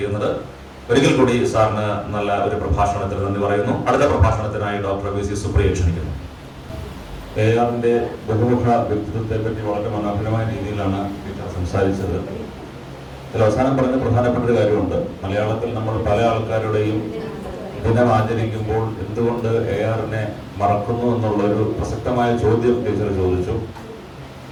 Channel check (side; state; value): both; identical; correlation 1.00